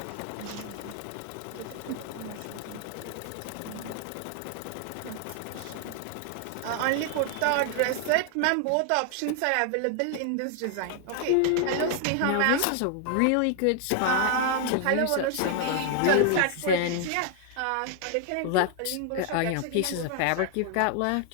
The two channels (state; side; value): different; both; correlation 0.00